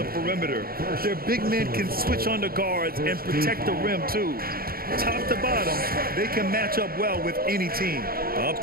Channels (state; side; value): late; left; 0.43 ms